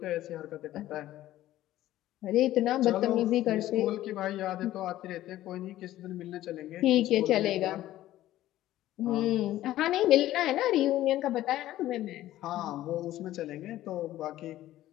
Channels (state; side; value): quieter; right; 14.3 dB